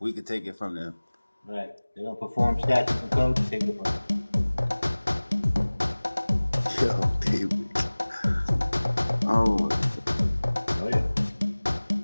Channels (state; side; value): inverted; both; correlation -1.00